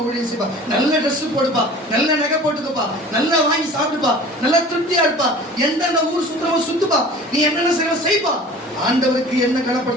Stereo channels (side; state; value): both; normal; correlation 0.43